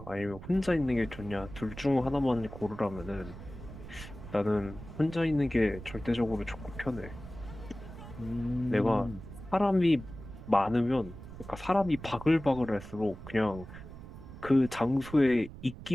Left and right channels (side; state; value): right; noise; rumble, 14 dB below the sound